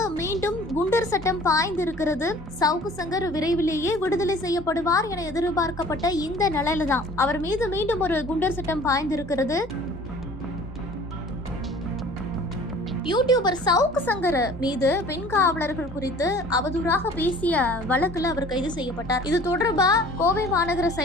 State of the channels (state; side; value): normal; both; correlation 0.49